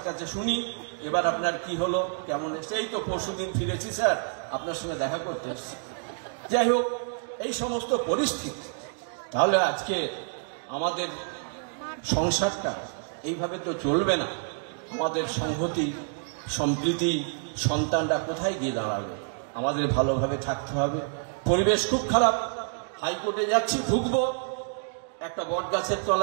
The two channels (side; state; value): left; silent; digital silence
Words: কাছে শুনি এবার আপনার কি হলো, কেমন এসছে। এই তো পরশুদিন ফিরেছি স্যার, আপনার সঙ্গে দেখা করতে এসছি। যাই হোক, এই সমস্ত পরিস্থিতি। তাহলে আজকে আমাদের সংসারটা এইভাবে তো চলবে না, আমাদের সংহতি সম্প্রীতি, সন্তানরা কোথায় গিয়ে দাঁড়াবে? আমাদের ভালোভাবে থাকতে হবে। পরিবেশ খুব খারাপ, হাইকোর্টে যাচ্ছি, ঢুকবো, একটা বট গাছের